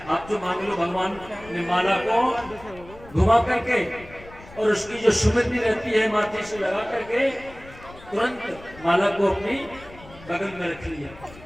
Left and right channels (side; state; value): left; noise; rumble, 20 dB below the sound